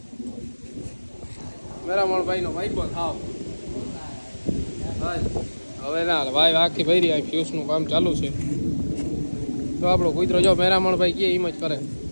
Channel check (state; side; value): inverted; both; correlation -1.00